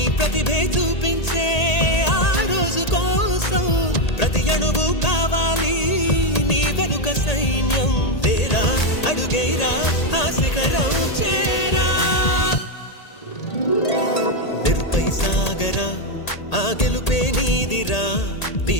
ప్రతిభే చూపించే ఆ రోజు కోసం, ప్రతి అణువు కావాలి నీ వెనుక సైన్యం. లేరా అడుగైరా ఆ శిఖరం చేరా. మెరుపై సాగరా ఆ గెలుపే నీదిరా, నీ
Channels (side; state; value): right; late; 1.8 ms